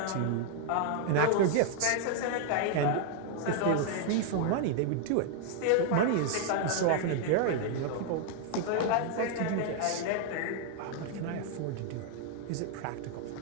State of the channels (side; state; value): both; different; correlation 0.00